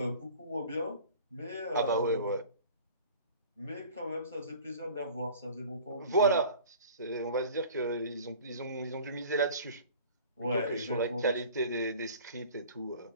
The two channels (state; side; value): inverted; both; correlation -0.45